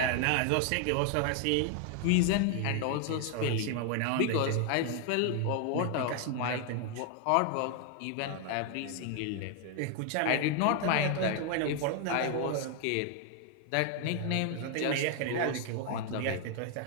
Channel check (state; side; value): different; both; correlation 0.00